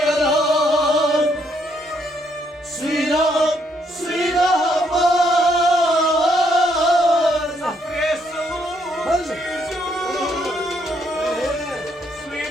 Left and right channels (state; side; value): normal; both; correlation 0.72